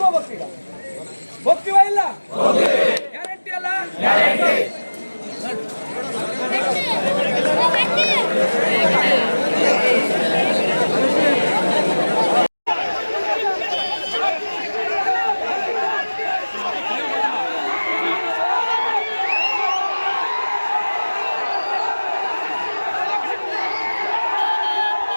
ಹೋಗ್ಬೇಕು. ಈಗ ಹೋಗ್ತೀವ ಇಲ್ಲ? ಗ್ಯಾರಂಟಿ ಅಲ್ಲ?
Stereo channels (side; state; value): both; inverted; correlation -1.00